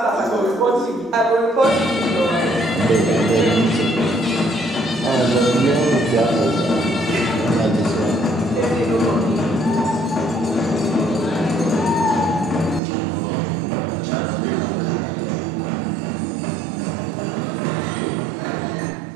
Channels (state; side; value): drops out; left; at 12.8 s